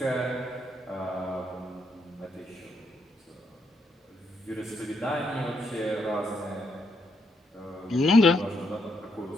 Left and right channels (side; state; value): both; normal; correlation 0.77